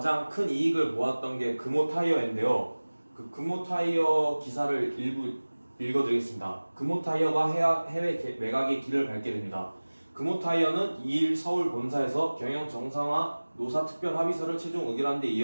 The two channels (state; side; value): inverted; both; correlation -1.00